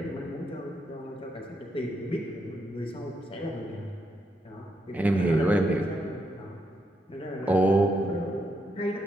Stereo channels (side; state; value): both; normal; correlation 0.79